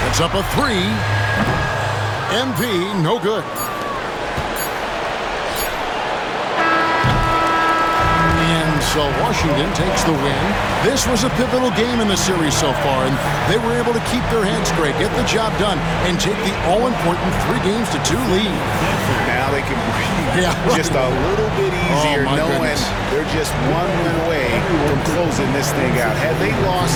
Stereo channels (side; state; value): both; identical; correlation 1.00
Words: It's up a 3. MP, no good. So Washington takes the win. This was a pivotal game in the series so far, and they were able to keep their heads straight, get the job done, and take the all-important 3-2 lead. Now they can breathe just a little bit easier, knowing they're just one win away from closing this thing out. Had they